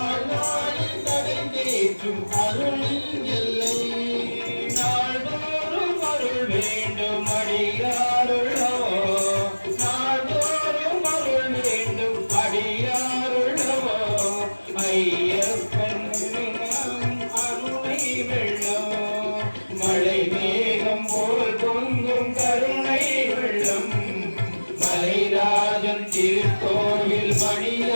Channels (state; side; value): inverted; both; correlation -1.00